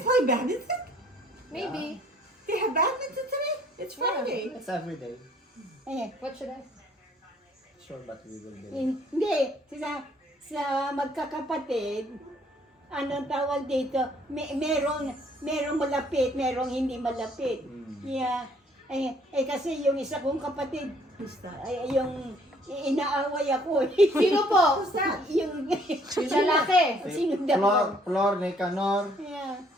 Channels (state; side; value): normal; both; correlation 0.62